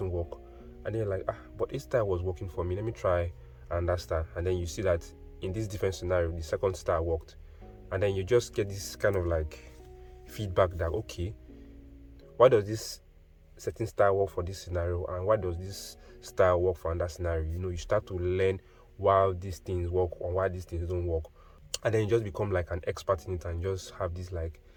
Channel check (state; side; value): identical; both; correlation 1.00